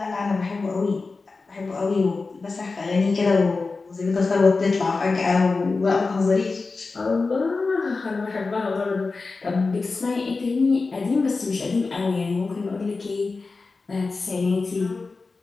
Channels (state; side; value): quieter; right; 4.0 dB